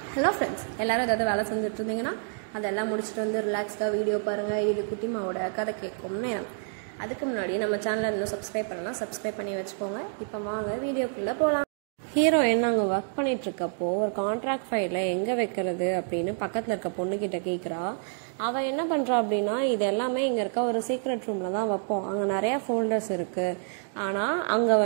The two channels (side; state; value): left; silent; digital silence